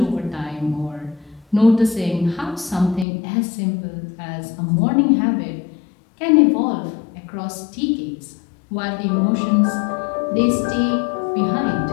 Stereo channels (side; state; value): right; drops out; at 3.1 s